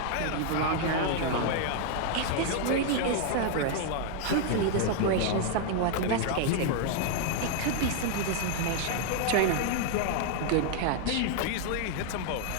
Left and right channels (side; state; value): both; different; correlation 0.00